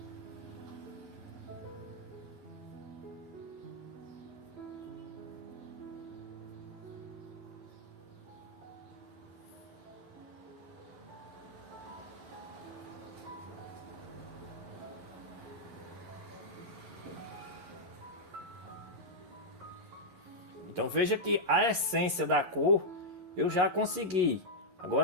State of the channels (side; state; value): left; late; 11 ms